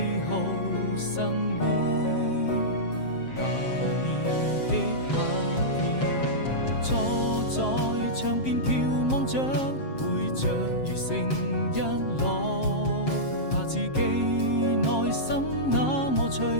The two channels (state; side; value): late; right; 7.5 ms